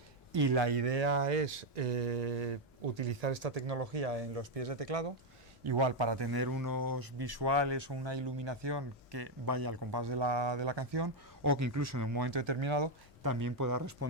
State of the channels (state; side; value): normal; both; correlation 0.03